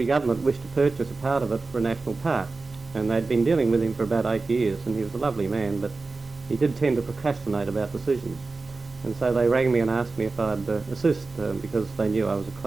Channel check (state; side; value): quieter; left; 3.8 dB